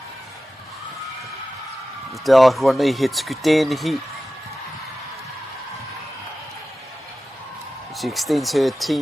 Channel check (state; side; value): normal; both; correlation 0.94